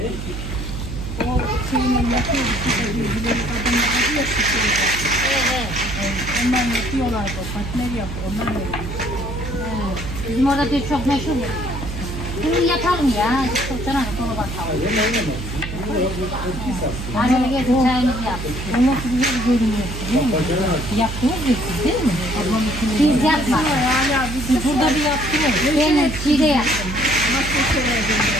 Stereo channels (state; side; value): noise; right; hum, 6 dB below the sound